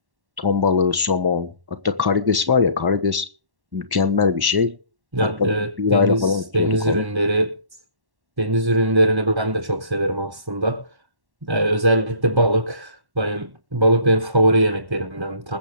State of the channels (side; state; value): left; late; 1.1 ms